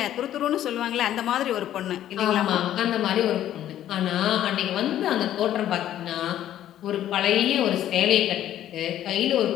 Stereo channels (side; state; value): right; quieter; 11.9 dB